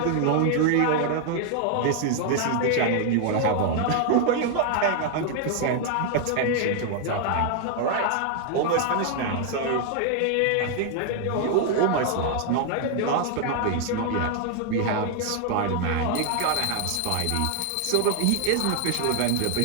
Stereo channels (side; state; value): both; different; correlation 0.00